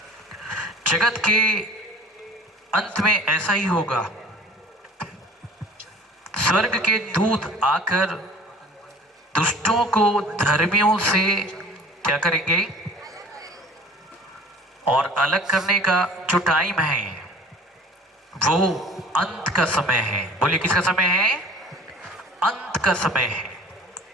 जगत के अंत में ऐसा ही होगा, स्वर्ग के दूत आकर दुष्टों को धर्मियों से क्या करेंगे, और अलग करने का जो टाइम है वो अंत का समय है। बोलिए किसका समय है? अंत का समय है।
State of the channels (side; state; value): both; normal; correlation 0.46